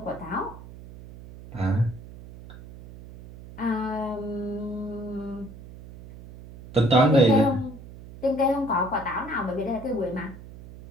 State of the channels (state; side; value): noise; right; hum, 16 dB below the sound